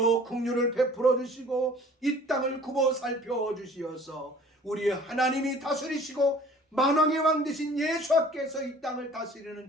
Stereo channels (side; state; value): both; normal; correlation 0.50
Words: 긍휼을 베풀어 주시고 이 땅을 굽어 살펴 주시어서 우리의 하나님이 다스리시고 만왕의 왕 되신 예수께서 이 땅을 다스리는